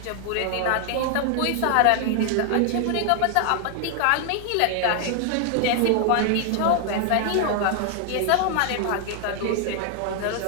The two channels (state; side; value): different; both; correlation 0.00